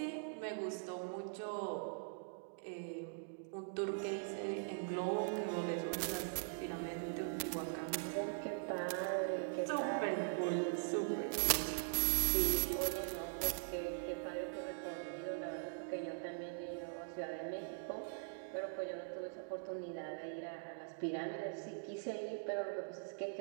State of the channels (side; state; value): left; silent; digital silence